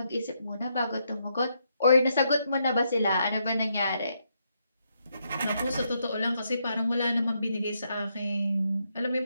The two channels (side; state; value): both; inverted; correlation -0.78